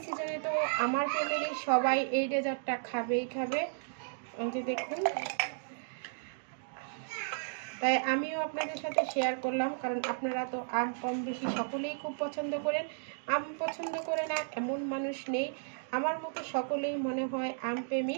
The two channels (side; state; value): left; silent; digital silence